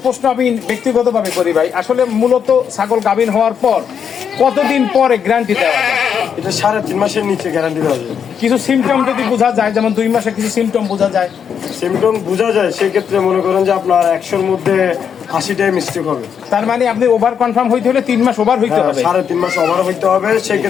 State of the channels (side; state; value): right; quieter; 7.5 dB